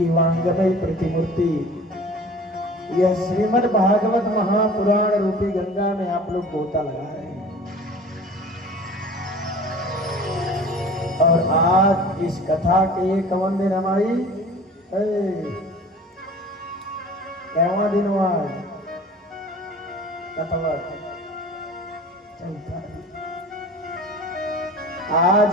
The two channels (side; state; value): both; normal; correlation 0.43